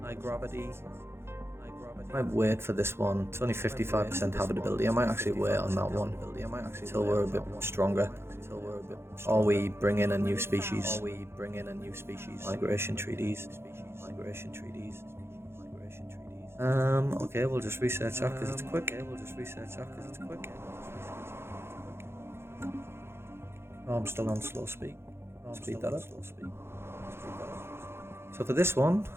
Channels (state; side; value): late; left; 0.12 ms